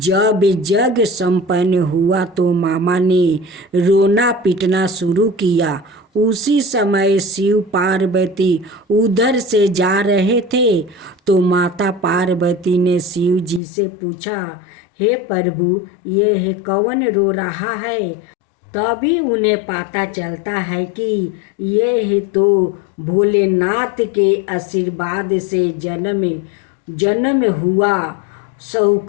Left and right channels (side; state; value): right; drops out; at 13.6 s